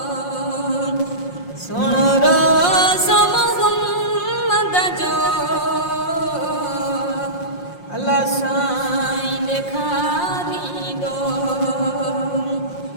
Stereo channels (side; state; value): right; late; 5.6 ms